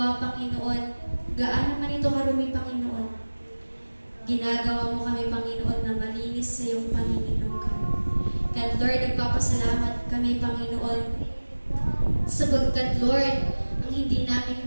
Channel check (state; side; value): inverted; both; correlation -1.00